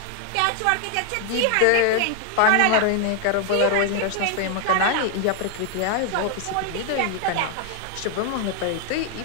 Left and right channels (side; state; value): both; different; correlation 0.00